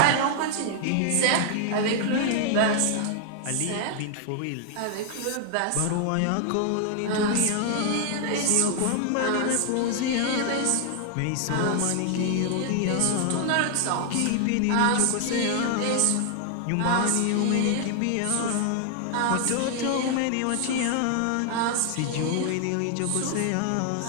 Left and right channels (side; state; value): both; different; correlation 0.00